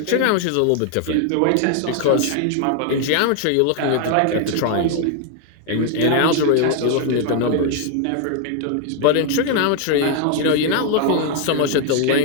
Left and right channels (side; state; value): both; different; correlation 0.00